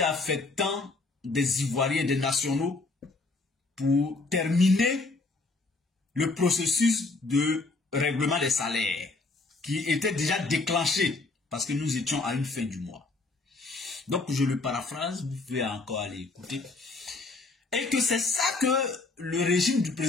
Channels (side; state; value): right; quieter; 3.5 dB